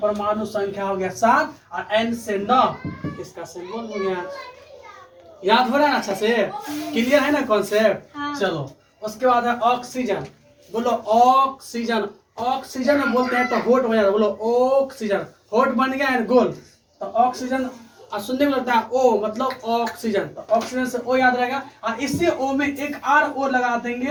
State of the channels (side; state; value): both; identical; correlation 1.00